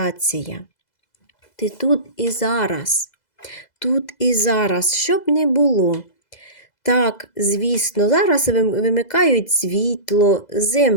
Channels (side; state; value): right; late; 2.0 ms